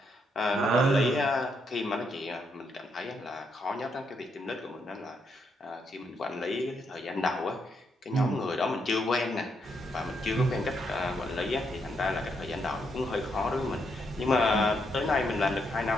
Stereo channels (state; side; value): normal; both; correlation 0.78